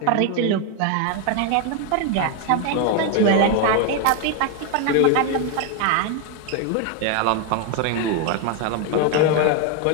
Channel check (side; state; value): both; different; correlation 0.01